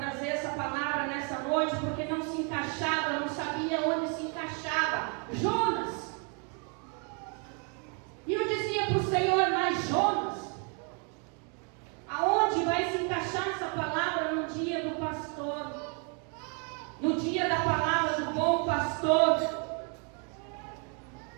essa palavra nessa noite, porque não se encaixava, eu não sabia onde se encaixava. Jonas. E eu dizia para o Senhor, mas Jonas, aonde vai se encaixar essa palavra no dia do pastor? No dia da palavra do bom pastor?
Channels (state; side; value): quieter; left; 37.7 dB